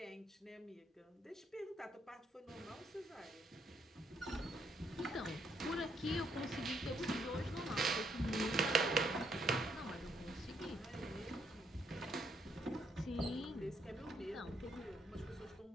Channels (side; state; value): both; normal; correlation 0.73